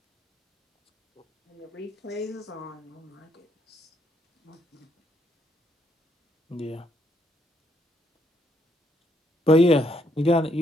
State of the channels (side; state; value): both; normal; correlation 0.73